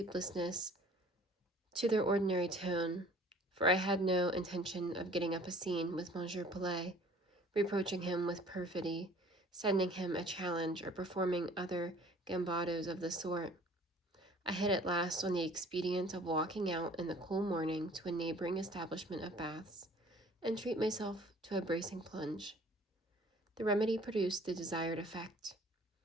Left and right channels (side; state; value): both; normal; correlation 0.51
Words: to their ordinary tone, for I had no intention of getting up a scene with Monsieur Pelet, reproaching him with perfidy, sending him a challenge, or performing other gambados of the sort. I hit at last on the expedient of walking out in the cool morning to a neighboring establishment of baths, and treat myself to a bracing plunge. The remedy produced the desired effect.